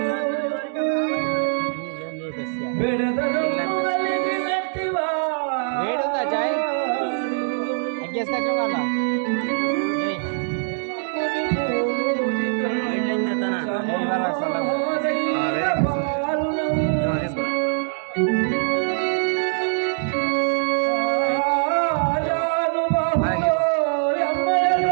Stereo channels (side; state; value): left; silent; 64 dB below the other